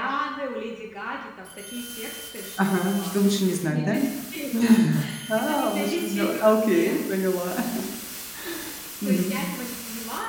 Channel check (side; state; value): both; identical; correlation 1.00